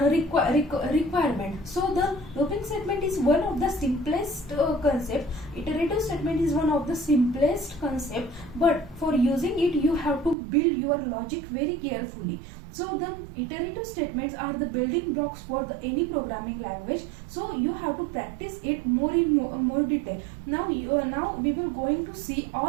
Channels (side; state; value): left; drops out; at 10.4 s